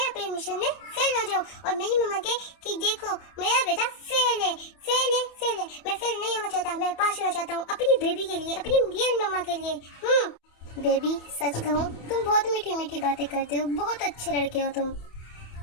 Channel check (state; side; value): late; right; 28 ms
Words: अपने मिशन में फेल हो जाऊँ और मेरी मम्मा के कि देखो मेरा बेटा फेल है, फेल है, फेल है। मैं फेल नहीं होना चाहता, मैं पास होना चाहता हूँ अपनी बेबी के लिए, अपनी रियल मम्मा के लिए। बेबी सच कहूँ तुम बहुत मीठी मीठी बातें करते हो, बहुत अच्छे लड़के हो तुम।